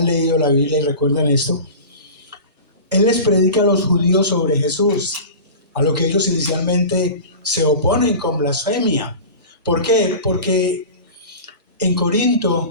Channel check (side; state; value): both; inverted; correlation -0.34